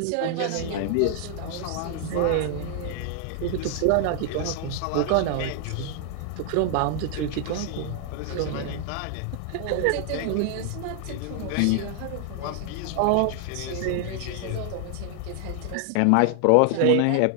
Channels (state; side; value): different; both; correlation 0.00